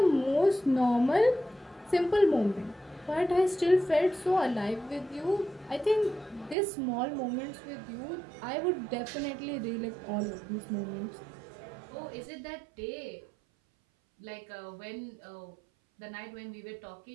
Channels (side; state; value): left; drops out; at 6.6 s